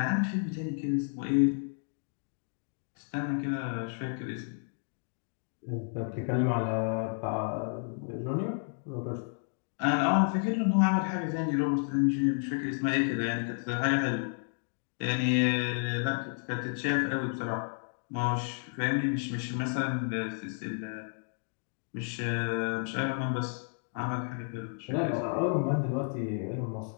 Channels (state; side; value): silent; right; 57 dB below the other